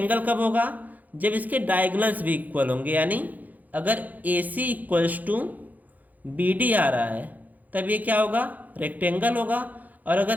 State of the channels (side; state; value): left; late; 0.081 ms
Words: कब होगा? जब इसके डायगोनल्स भी इक्वल होंगे, यानी अगर ए सी इक्वल्स टू बी डी आ रहा है तब ये क्या होगा? रेक्टेंगल होगा। और